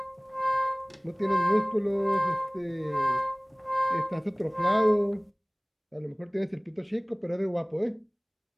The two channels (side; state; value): both; identical; correlation 1.00